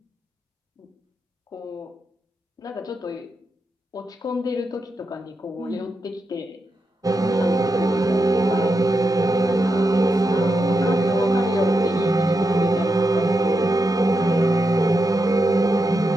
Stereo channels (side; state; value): both; normal; correlation 0.86